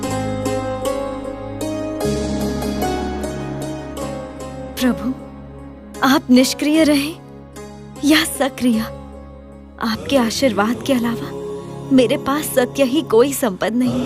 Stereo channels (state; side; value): identical; both; correlation 1.00